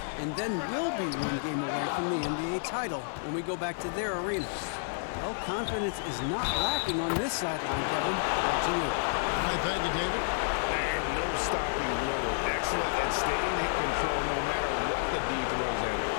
and then we'll be 1 game away from the NBA title when we go back to their arena. Well, confidence is not lacking on this sideline, Kevin. Back to you. I thank you, David. And no stopping Lillard. Excellent at staying in control no matter what the D throws at him.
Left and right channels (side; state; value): right; silent; 58 dB below the other